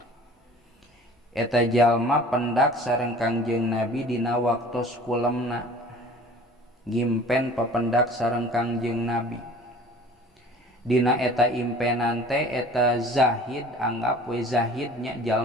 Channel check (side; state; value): both; normal; correlation 0.45